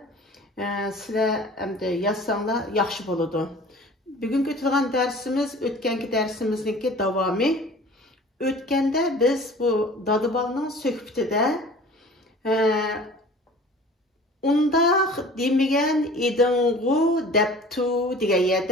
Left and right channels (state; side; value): normal; both; correlation 0.44